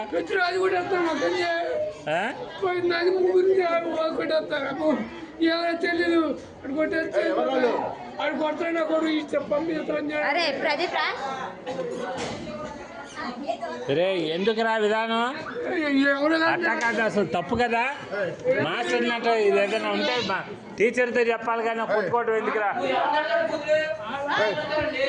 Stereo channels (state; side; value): identical; both; correlation 1.00